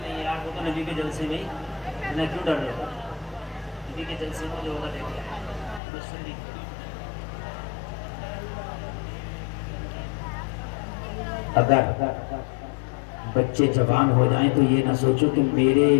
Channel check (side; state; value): right; drops out; at 5.8 s